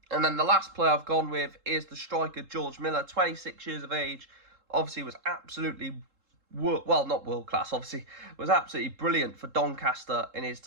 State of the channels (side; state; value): left; late; 3.7 ms